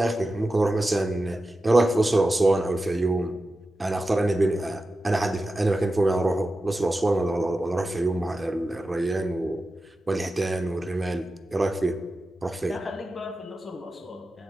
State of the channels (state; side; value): normal; both; correlation 0.92